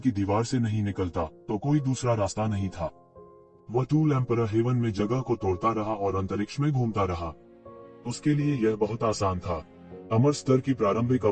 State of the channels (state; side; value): identical; both; correlation 1.00